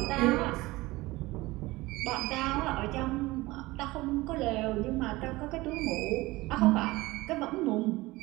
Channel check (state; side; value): quieter; left; 20.3 dB